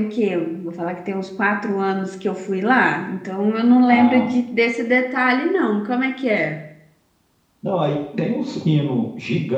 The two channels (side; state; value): both; identical; correlation 1.00